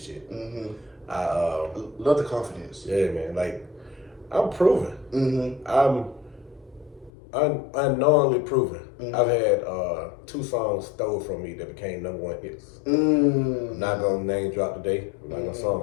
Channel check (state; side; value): drops out; right; at 7.1 s